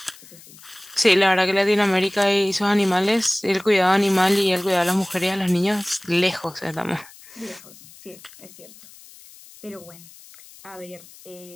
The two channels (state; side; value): noise; left; hiss, 22 dB below the sound